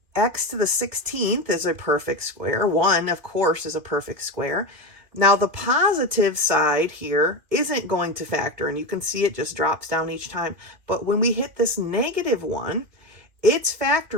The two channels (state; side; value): late; left; 2.8 ms